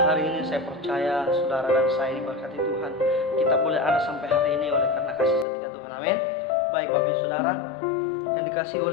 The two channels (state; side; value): drops out; right; at 5.5 s